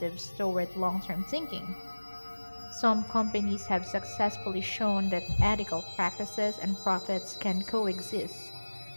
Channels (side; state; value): both; inverted; correlation -1.00